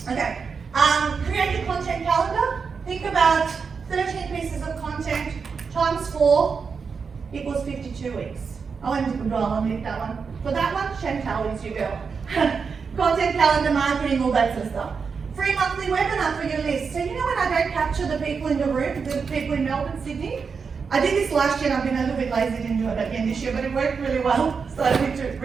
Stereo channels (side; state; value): left; quieter; 5.5 dB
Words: Okay, create a content calendar. Think about 13 pieces of content times 4 equals 52 weeks. I went to Google, I'll make that one. For that one, Chantal is your girl. Content calendar, marketing, all that sort of stuff. Free monthly webinar for your list. So you know when I don't capture the people in the room, the people in Melbourne, Sydney? I did this last year and I've been a little bit lazy, didn't do it again this year, but it worked really well, so I need to